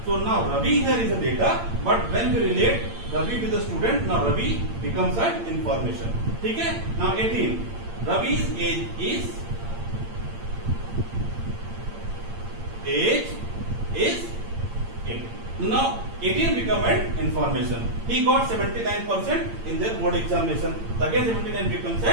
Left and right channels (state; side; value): late; left; 8.8 ms